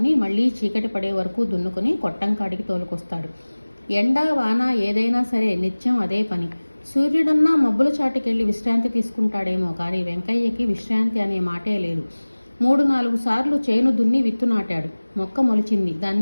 మళ్ళీ చీకటి పడే వరకు దున్నుకొని కొట్టం కాడికి తోలుకొస్తాడు. ఎండా వాన ఏదైనా సరే నిత్యం అదే పని. సూర్యుడన్నా మబ్బుల చాటుకెళ్ళి విశ్రాంతి తీసుకుంటాడేమో కానీ వెంకయ్యకి విశ్రాంతి అనే మాటే లేదు. 3-4 సార్లు చేను దున్ని విత్తు నాటాడు. మొక్క మొలిచింది.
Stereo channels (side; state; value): both; inverted; correlation -1.00